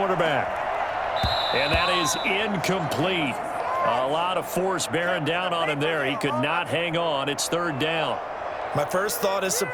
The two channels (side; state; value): both; identical; correlation 1.00